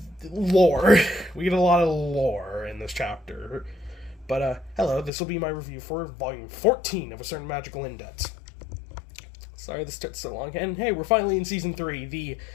lore. We get a lot of lore in this chapter. But, hello, this will be my review for Volume 14 of A Certain Magical Index. Sorry this took so long, and hey, we're finally in Season 3, the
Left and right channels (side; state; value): right; drops out; at 5.1 s